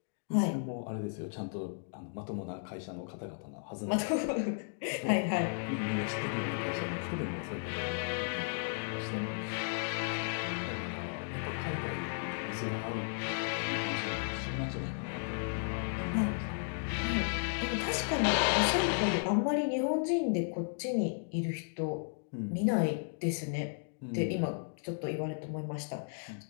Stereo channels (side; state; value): right; silent; digital silence